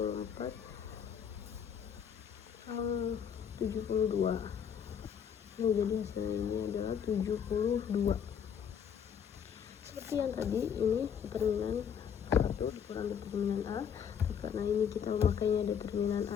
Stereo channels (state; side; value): quieter; right; 7.9 dB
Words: yang 72. Nah, jadi hasilnya adalah 72. Seperti yang tadi, ini determinan 1 dikurang determinan A. Karena ini kita memakainya determinan